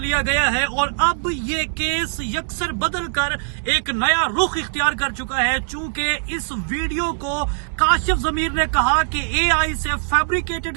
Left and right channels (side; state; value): left; silent; digital silence